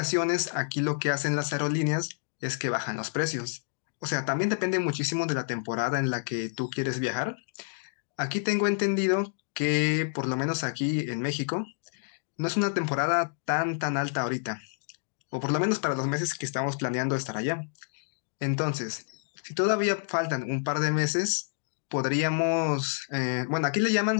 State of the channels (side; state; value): right; silent; digital silence